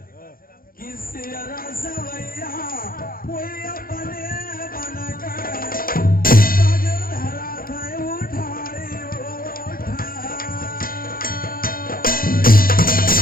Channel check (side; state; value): right; late; 0.42 ms